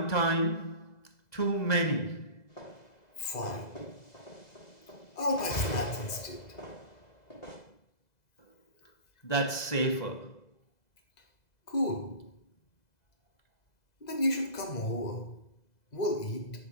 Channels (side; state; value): right; late; 2.0 ms